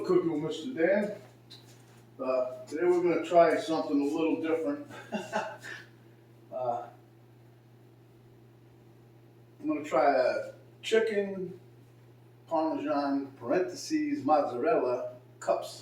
Cooking with Mr. Dan. Today we're going to try something a little different. I'm going to try a chicken Parmesan mozzarella cups.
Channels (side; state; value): both; identical; correlation 1.00